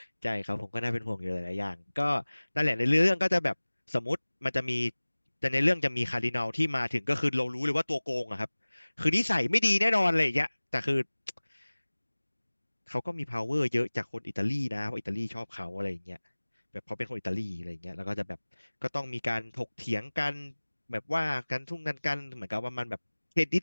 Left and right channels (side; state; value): both; inverted; correlation -1.00